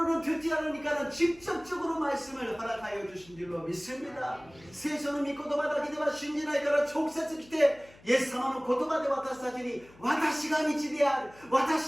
듣지 않으니까는 직접적으로 말씀을 허락하여 주신 줄로 믿습니다. 聖書の御言葉だけでは信じないから直接来て、イエス様の言葉で私たちに、私が道である、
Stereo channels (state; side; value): noise; left; hum, 25 dB below the sound